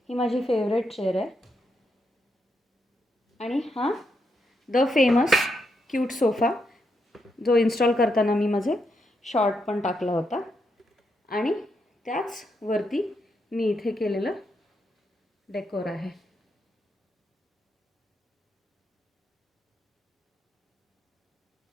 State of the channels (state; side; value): normal; both; correlation 0.81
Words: ही माझी फेवरेट चेअर आहे. आणि हा द फेमस क्यूट सोफा जो इन्स्टॉल करताना मी माझे शॉर्ट पण टाकला होता. आणि त्याच वरती मी इथे केलेलं डेकोर आहे.